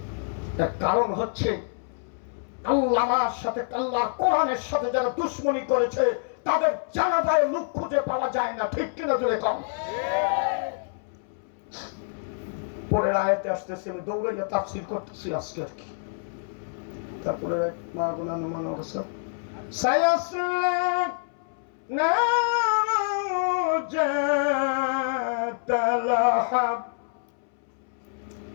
এর কারণ হচ্ছে আল্লাহর সাথে, আল্লাহর কোরআনের সাথে যারা দুশ্মনী করেছে তাদের জানাজায় লোক খুঁজে পাওয়া যায় না। ঠিক কিনা জোরে কম? পরের আয়াতে আসতেছে, আমি দৌড়াইয়া তাফসীর করতেছি আজকে আর কি। তারপরে মা গুনা নুমান অবস্থা সায়াসলা নাজাতালাহাব।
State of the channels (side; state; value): right; silent; 60 dB below the other